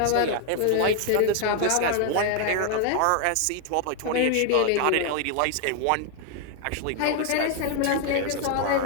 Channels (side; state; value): both; different; correlation 0.00